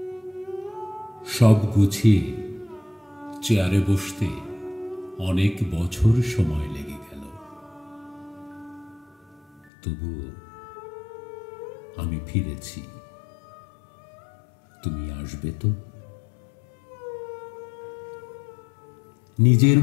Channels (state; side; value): drops out; right; at 9.7 s